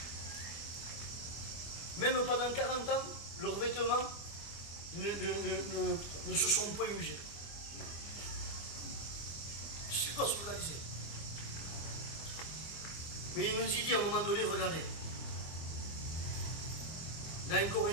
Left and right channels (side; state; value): right; late; 25 ms